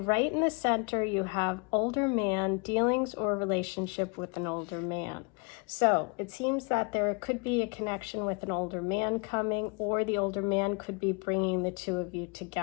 right in the center, you have older man, dealings or relationship with an older man. So it seems that there could be a connection with an older man coming, or the older man could be bringing the two of you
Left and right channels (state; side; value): quieter; right; 33.4 dB